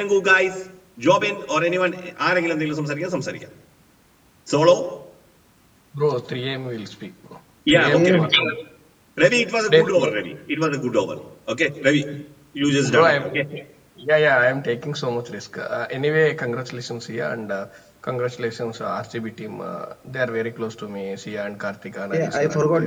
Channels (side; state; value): both; identical; correlation 1.00